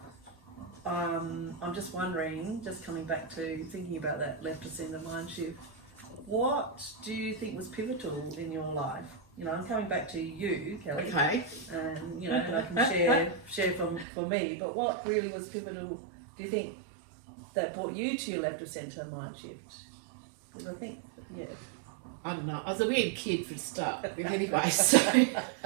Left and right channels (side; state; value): left; drops out; at 14.1 s